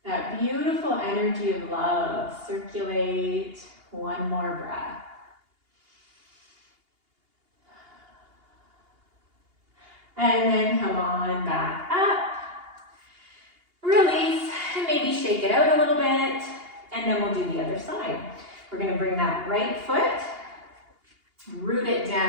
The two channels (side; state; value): left; late; 2.8 ms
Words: that beautiful energy of love circulate. One more breath. And then come on back up. Release, and maybe shake it out a little bit. And then we'll do the other side. We're going to bring that right foot, root it